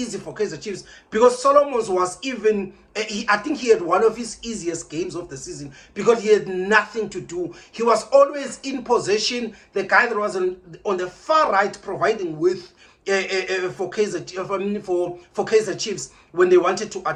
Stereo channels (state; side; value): identical; both; correlation 1.00